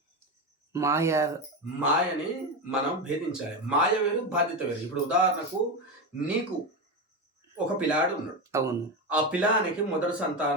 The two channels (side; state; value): both; normal; correlation 0.15